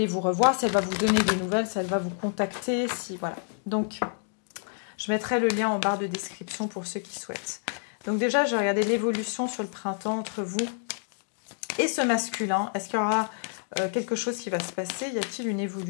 vous revoir, si elle va vous donner des nouvelles, si elle va vous contacter, si voilà. Donc, je mettrai le lien en barre de description pour ceux qui souhaitent. Donc déjà, je vais regarder l'évolution sur le printemps entre vous et ce masculin. Est-ce qu'il y aura quelque chose qui va se passer? Y a-t-il une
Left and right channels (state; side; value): silent; right; digital silence